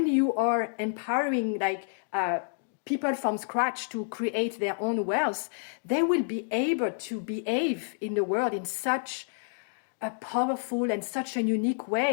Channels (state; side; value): silent; right; digital silence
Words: you are empowering people from scratch to create their own wealth, they will be able to behave in the world in such a powerful and such a unique